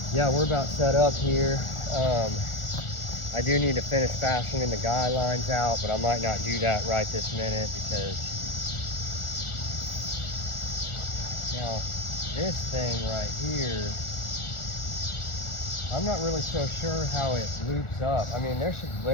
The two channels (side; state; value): right; late; 1.4 ms